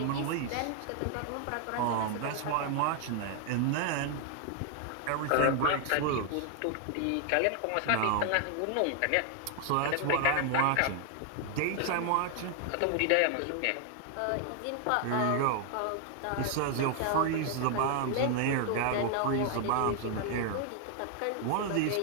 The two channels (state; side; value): different; both; correlation 0.00